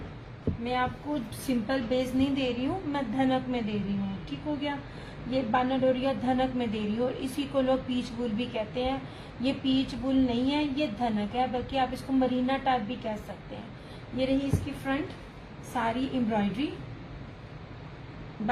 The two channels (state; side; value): identical; both; correlation 1.00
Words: मैं आपको सिंपल बेस नहीं दे रही हूँ, मैं धनक में दे रही हूँ, ठीक हो गया। ये बानाडोरिया धनक में दे रही हूँ और इसी को लोग पीच बुल भी कहते हैं। ये पीच बुल नहीं है, ये धनक है, बल्कि आप इसको मरीना टाइप भी कह सकते हैं। ये रही इसकी फ्रंट सारी एम्ब्रॉयडरी।